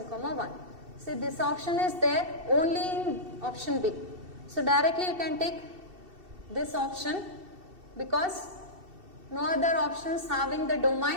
comma 1. See, this option is there only in option B. So directly you can take this option because no other options having the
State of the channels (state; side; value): late; left; 2.7 ms